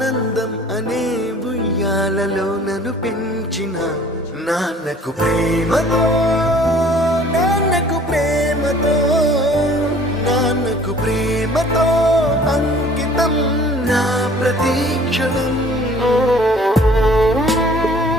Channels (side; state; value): both; normal; correlation 0.52